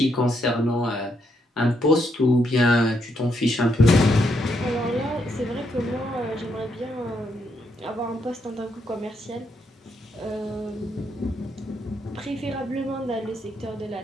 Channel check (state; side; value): normal; both; correlation 0.77